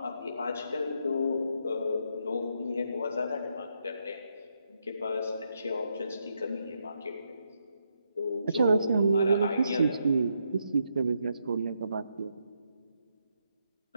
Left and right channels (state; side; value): inverted; both; correlation -0.79